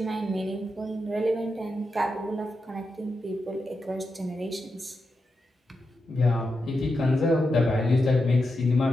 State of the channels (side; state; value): both; normal; correlation 0.87